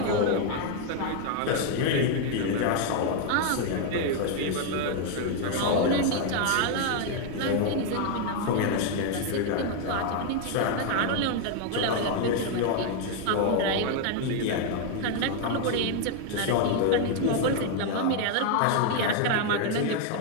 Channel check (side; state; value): both; different; correlation 0.01